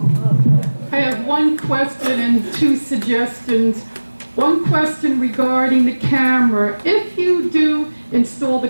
I have one question and two suggestions. One question regarding the camera. If you do install the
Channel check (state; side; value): inverted; both; correlation -1.00